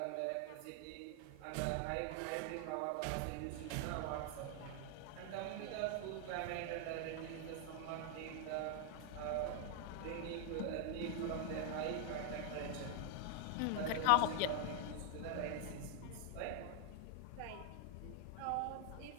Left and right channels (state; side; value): different; both; correlation 0.00